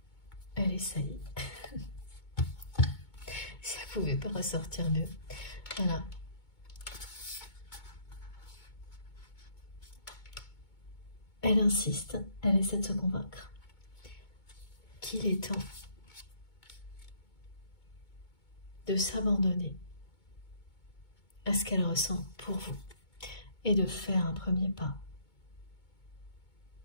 Elle essaye. Si elle ne pouvait pas ressortir mieux. Voilà. Elle insiste, elle essaie de se convaincre qu'il est temps de s'abandonner à ce qu'elle ressent pour vous et de faire un premier pas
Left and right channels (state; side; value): late; right; 2.2 ms